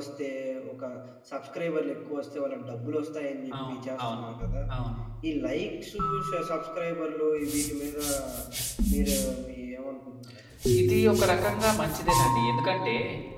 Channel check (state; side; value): identical; both; correlation 1.00